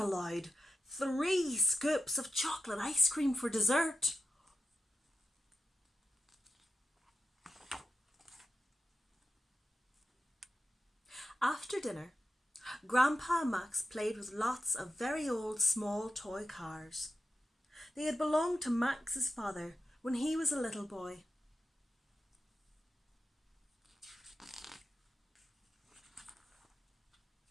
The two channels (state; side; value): normal; both; correlation 0.90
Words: 3 scoops of chocolate ice cream for dessert. After dinner, Grandpa and Max played with lots of very old small toy cars. They had belonged to Max's father when he was a little boy.